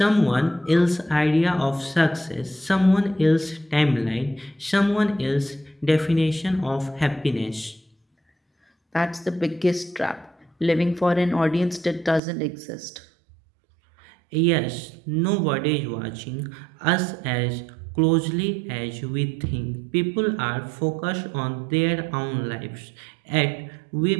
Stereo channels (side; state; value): left; drops out; at 12.2 s